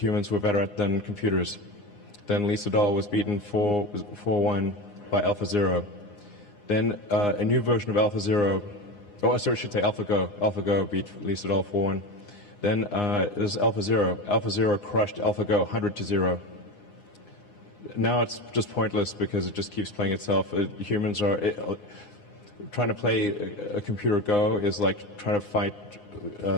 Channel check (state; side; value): late; right; 9.7 ms